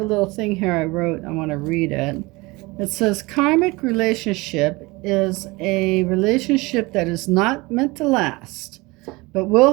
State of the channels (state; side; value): quieter; left; 23.4 dB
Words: little thing here I wrote. I want to read it. It says, karmic relationship is a relationship that is not meant to last, but will